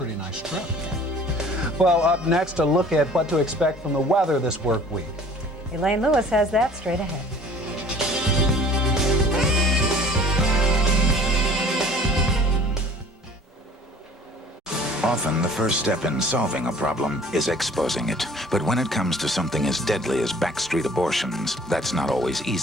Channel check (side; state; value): both; normal; correlation 0.49